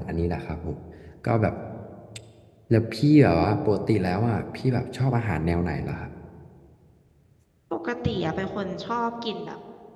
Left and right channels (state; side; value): identical; both; correlation 1.00